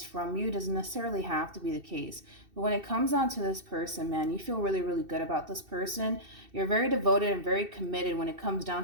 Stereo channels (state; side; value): late; left; 2.7 ms